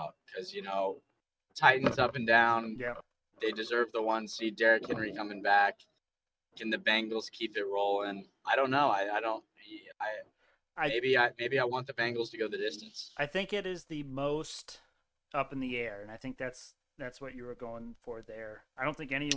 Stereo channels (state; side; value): identical; both; correlation 1.00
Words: because Titans up and down. Yeah. They deserve the 1 seed. Derrick Henry coming back. Can the Bengals keep it rolling? I don't know. I don't. Maybe I want the Bengals to go the distance. I think it is the most up in the air, and I think that's what you were going for there. I don't think